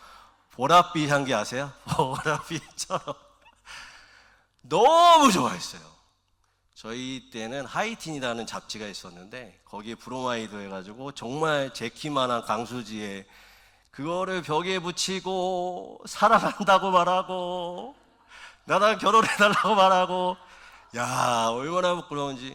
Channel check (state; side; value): identical; both; correlation 1.00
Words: 보랏빛 향기 아세요? 보랏빛처럼 너무 좋아했어요. 저희 때는 하이틴이라는 잡지가 있었는데 거기에 브로마이드 해가지고 정말 제 키만한 강수지에 그거를 벽에 붙이고 사랑한다고 말하고 나랑 결혼해달라고 말하고, 야 얼마나